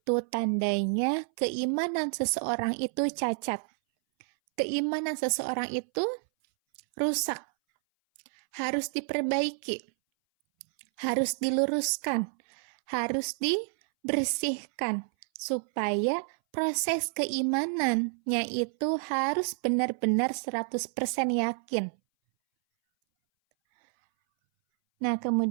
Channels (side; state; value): left; silent; 58 dB below the other